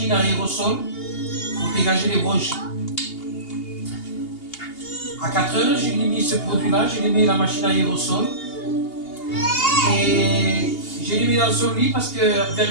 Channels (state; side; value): late; right; 2.8 ms